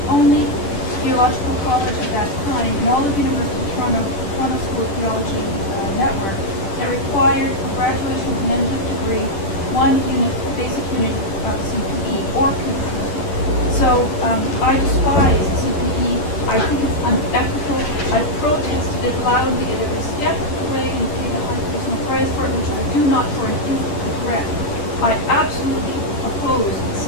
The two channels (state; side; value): late; right; 10 ms